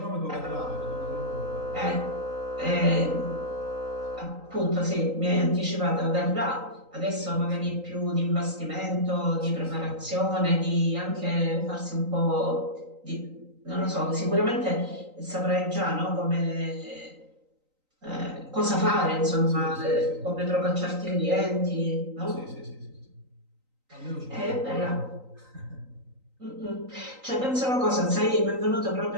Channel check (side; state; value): left; late; 3.9 ms